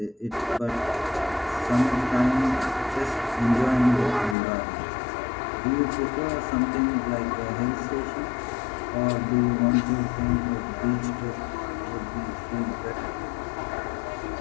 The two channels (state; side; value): drops out; right; at 4.4 s